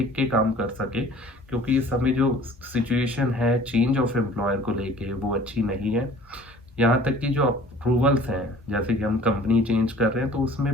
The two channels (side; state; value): both; normal; correlation 0.49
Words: के काम कर सकें। क्योंकि इस समय जो सिचुएशन है चेंज ऑफ एम्प्लॉयर को लेके वो अच्छी नहीं है। यहाँ तक कि जो अप्रूवल्स हैं, जैसे कि हम कंपनी चेंज कर रहे हैं तो